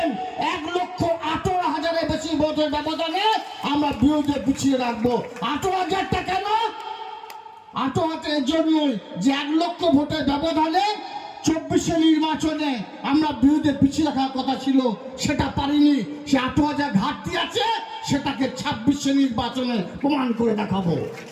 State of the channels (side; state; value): both; identical; correlation 1.00